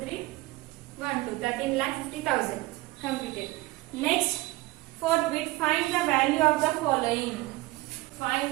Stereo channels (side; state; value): left; quieter; 20.1 dB